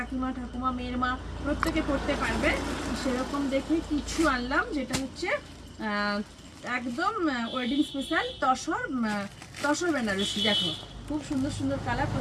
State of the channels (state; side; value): identical; both; correlation 1.00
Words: ঠাকুমা মেয়ের মা প্রত্যেকে পড়তে পারবে। সেরকম দেখে কিছু আনলাম, যেটা হচ্ছে একদম ওয়েডিং স্পেশাল তসর বেনারসি। দেখো খুব সুন্দর সুন্দর কালার,